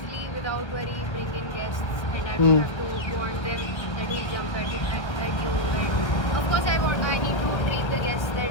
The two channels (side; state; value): right; late; 1.1 ms